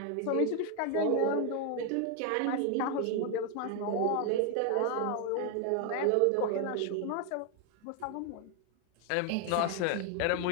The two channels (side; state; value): both; different; correlation 0.00